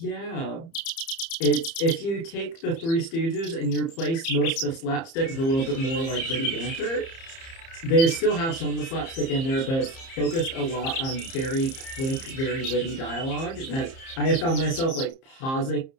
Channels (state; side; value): late; right; 30 ms